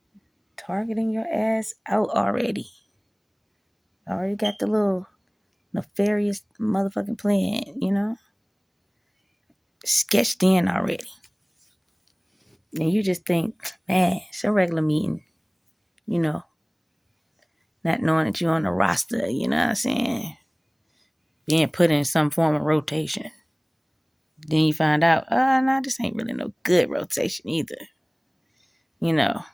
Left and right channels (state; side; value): identical; both; correlation 1.00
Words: targeting your ass out already. Already got the little nefarious motherfucking plan, sketched in already. And you just think, man, it's a regular meeting, not knowing that you're on the roster, you know what I'm saying? Being put in some form of rotation. Then you find out, no, this ain't really no good rotation either.